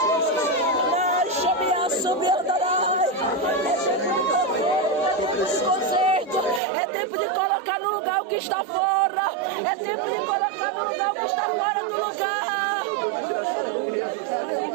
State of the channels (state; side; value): drops out; left; at 6.6 s